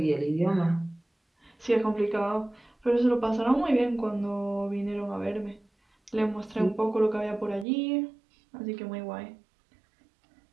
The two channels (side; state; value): left; drops out; at 7.7 s